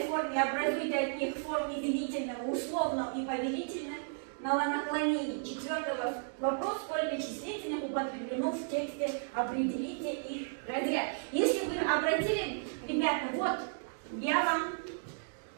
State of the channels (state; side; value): silent; left; digital silence